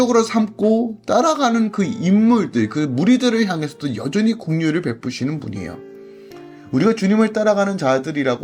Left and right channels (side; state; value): both; identical; correlation 1.00